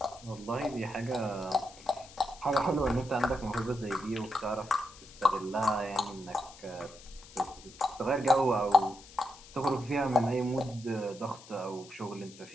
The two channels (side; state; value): left; noise; hiss, 20 dB below the sound